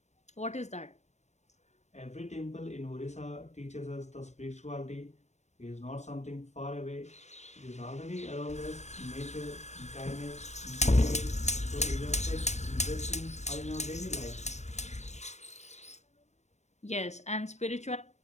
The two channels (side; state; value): right; late; 0.33 ms